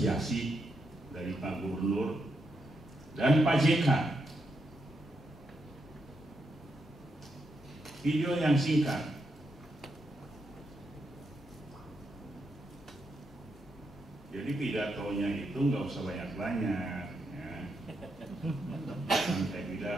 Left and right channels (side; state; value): both; normal; correlation 0.82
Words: dari Pak Gubernur dan Pak JK. Video yang singkat. Jadi pidatonya itu nggak usah banyak-banyak. Ya. Saya